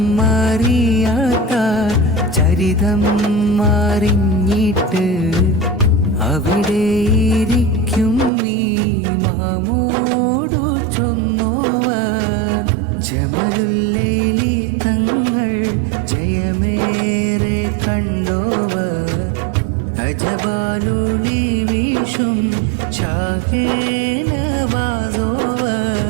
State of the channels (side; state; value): left; drops out; at 8.3 s